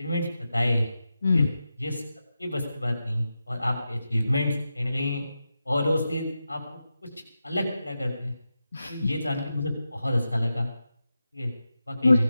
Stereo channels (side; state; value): both; inverted; correlation -0.91